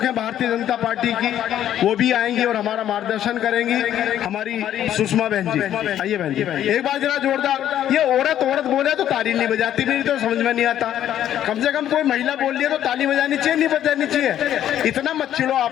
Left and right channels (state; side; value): quieter; right; 11.2 dB